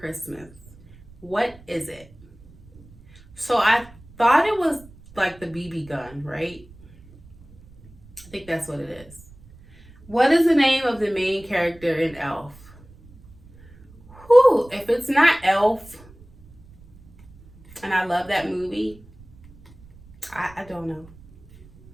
What is it? So I thought it was like the BB gun, right? I think that's what it is. What is the name of the main character in Elf? Whew, if it's not Elf, and I love that movie, I don't know.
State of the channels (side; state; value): right; noise; rumble, 24 dB below the sound